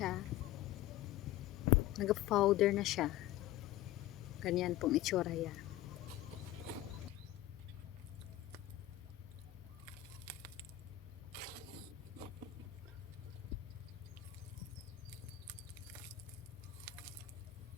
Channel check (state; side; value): quieter; right; 14.0 dB